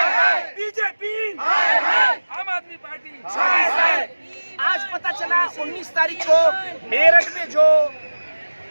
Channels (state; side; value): inverted; both; correlation -1.00